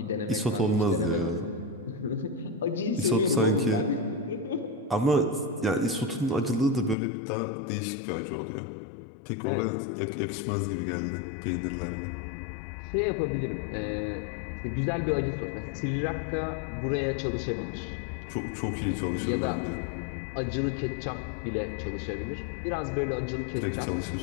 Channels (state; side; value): drops out; right; at 7.0 s